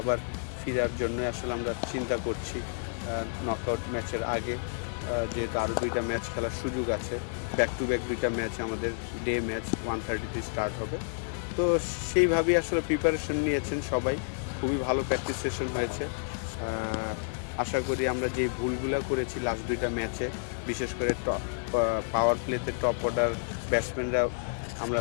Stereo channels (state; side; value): silent; right; 55 dB below the other